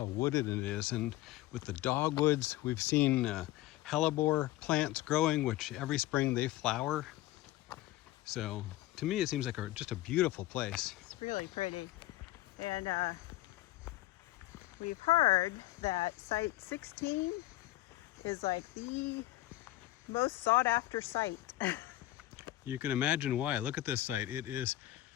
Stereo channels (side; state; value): right; quieter; 16.2 dB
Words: wooded it is, and with the dogwoods, we've seen hellebore plants growing, which every spring they flower. So to me, it seems like just a beautiful place. It's really pretty. And we've heard that site 16 is like the most sought after site. You can imagine why. Look at this site. It is